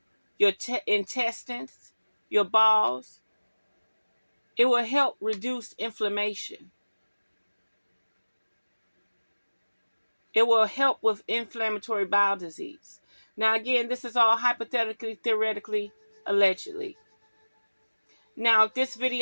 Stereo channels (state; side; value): inverted; both; correlation -1.00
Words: your intestines, your balls. It will help reduce inflammation. It will help with inflammatory bowel disease. Now, again, this is all hypothetically, theoretically, allegedly. Now, if this